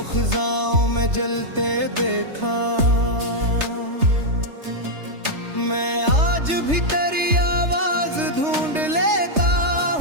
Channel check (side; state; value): left; late; 3.3 ms